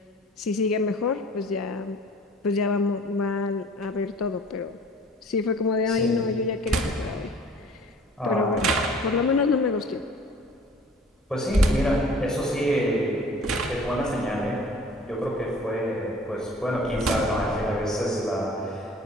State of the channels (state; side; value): normal; both; correlation 0.48